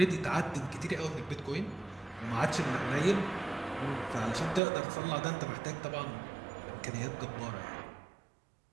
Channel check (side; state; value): left; drops out; at 4.6 s